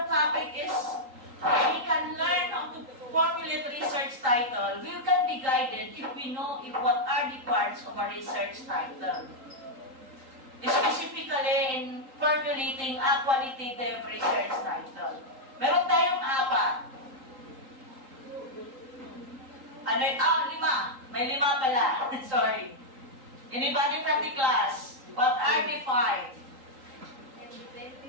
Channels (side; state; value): left; late; 3.8 ms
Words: topic is, we can learn how to formulate research title. We can be guided if we know what are the parts of a research title. Specifically in formulating a qualitative research title. Meron tayong 4. Lima. May 5 pala. Sorry. Anybody from the class? What are the 5?